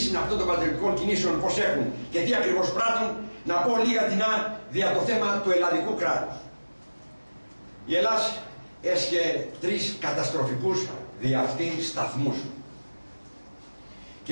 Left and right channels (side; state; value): both; inverted; correlation -1.00